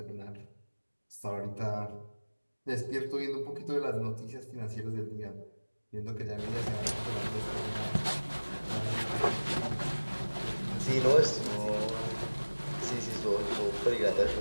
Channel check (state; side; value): inverted; both; correlation -1.00